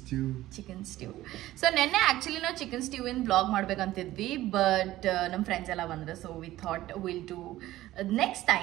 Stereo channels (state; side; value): quieter; left; 15.6 dB